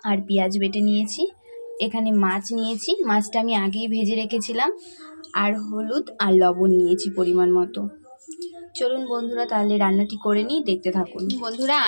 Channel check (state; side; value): inverted; both; correlation -1.00